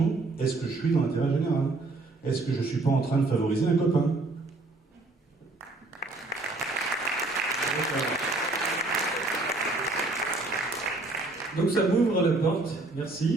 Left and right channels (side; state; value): left; quieter; 3.2 dB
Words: est-ce que je suis dans l'intérêt général? Est-ce que je ne suis pas en train de favoriser un copain? Donc ça m'ouvre la porte,